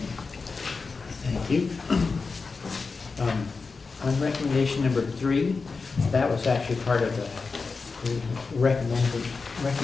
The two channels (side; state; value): right; quieter; 4.5 dB